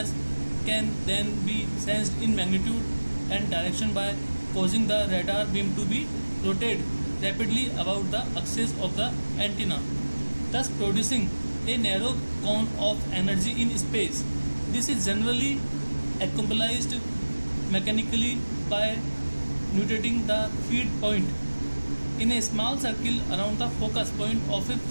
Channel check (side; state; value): both; inverted; correlation -1.00